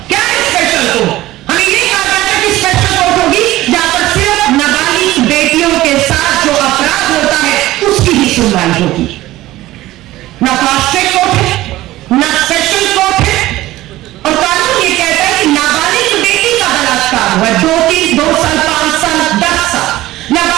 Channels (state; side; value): quieter; left; 16.5 dB